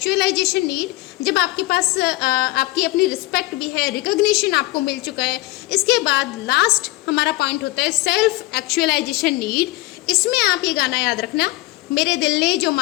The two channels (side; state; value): right; quieter; 20.0 dB